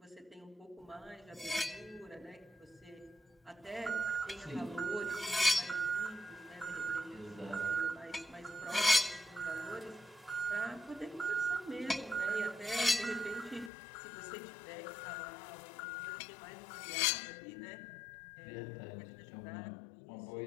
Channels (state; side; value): drops out; right; at 13.7 s